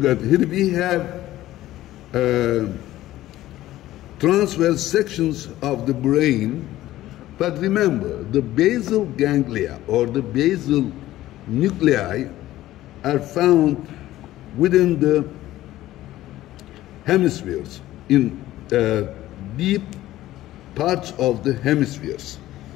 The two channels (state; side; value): quieter; right; 15.0 dB